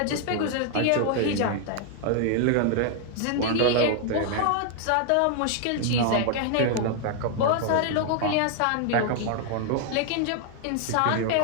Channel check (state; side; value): different; both; correlation 0.00